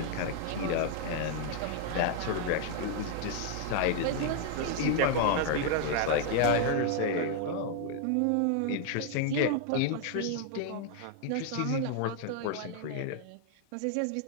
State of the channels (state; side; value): different; both; correlation 0.00